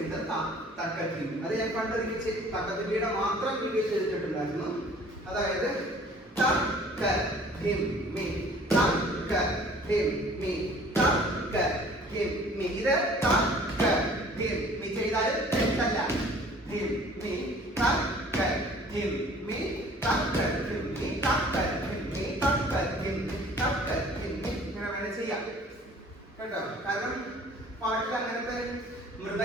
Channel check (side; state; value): both; normal; correlation 0.52